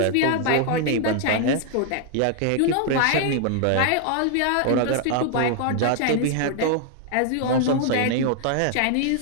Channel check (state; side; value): different; both; correlation 0.00